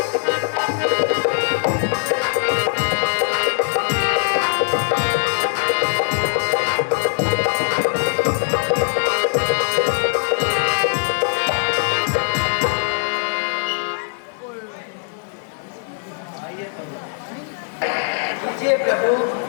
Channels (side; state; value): right; silent; digital silence